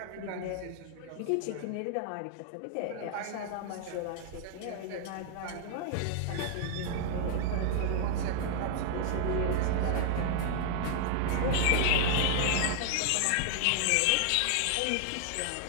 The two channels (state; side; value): different; both; correlation 0.00